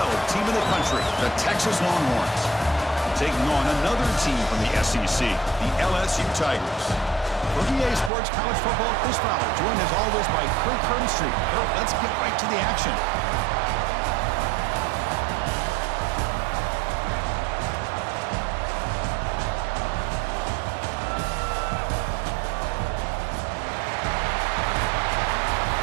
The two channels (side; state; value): left; drops out; at 8.1 s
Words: team in the country, the Texas Longhorns, taking on another team from the SEC, the LSU Tigers. For EA Sports College Football, Chris Fowler, joined as always by Kirk Herbstreit. Kirk, let's get right to the action.